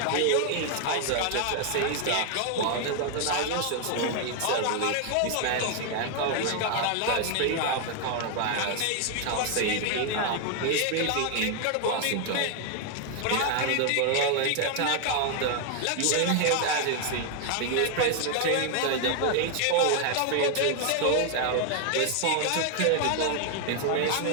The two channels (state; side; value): different; both; correlation 0.00